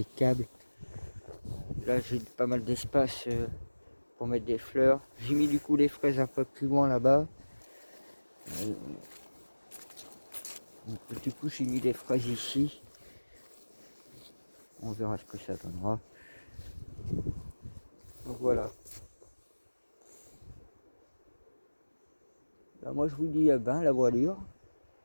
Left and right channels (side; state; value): both; inverted; correlation -1.00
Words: câbles. Là, j'ai pas mal d'espace pour mettre des fleurs. J'ai mis du coup les fraises un peu plus loin là-bas. Du coup, j'ai mis les fraises ici. On verra ce que ça donnera. Donc voilà. Là, moi, je vous dis à ben la voilure.